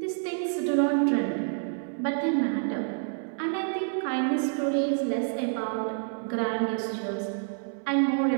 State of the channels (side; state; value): left; silent; 59 dB below the other